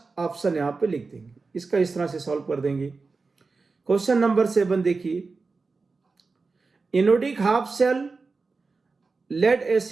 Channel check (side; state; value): left; quieter; 4.2 dB